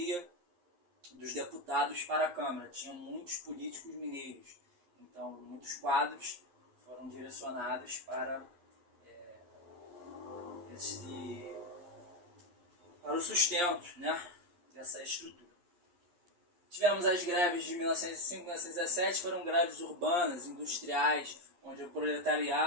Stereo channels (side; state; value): left; late; 11 ms